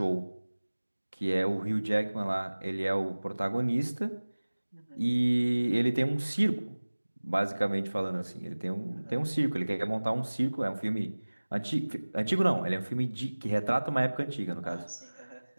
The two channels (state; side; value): inverted; both; correlation -1.00